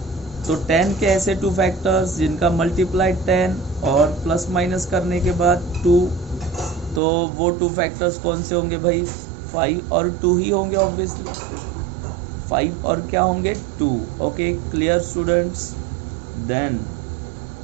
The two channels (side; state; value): left; drops out; at 7.0 s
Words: तो 10 के ऐसे 2 फैक्टर्स जिनका मल्टीप्लाई 10 और प्लस माइनस करने के बाद 2, तो वो 2 फैक्टर्स कौन से होंगे भाई, 5 और 2 ही होंगे ऑब्वियसली। 5 और क्या होंगे, 2। Okay, clear students. देन